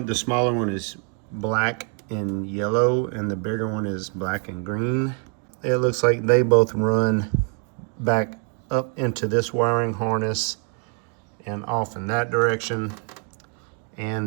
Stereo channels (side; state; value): left; quieter; 38.9 dB